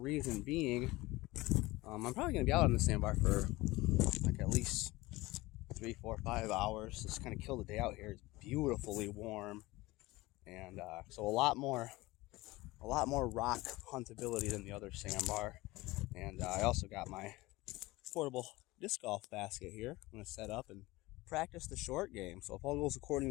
being, I'm probably going to be out on the sandbar for like at least 3, 4, 5 hours. Just kind of kill the day out here. It's beautifully warm, and so a lot more rock huntability than the other sandbar. And I also got my portable disc golf basket here. I'm going to set up and practice the short game. So if all goes according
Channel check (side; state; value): right; quieter; 20.3 dB